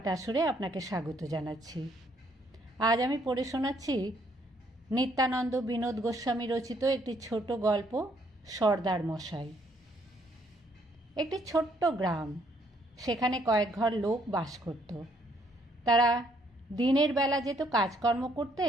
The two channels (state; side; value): normal; both; correlation 0.68